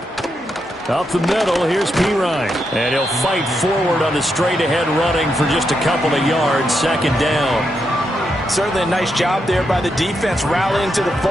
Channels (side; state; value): both; normal; correlation 0.83